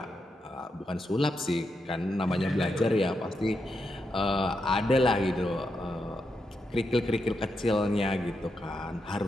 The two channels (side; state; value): both; normal; correlation 0.84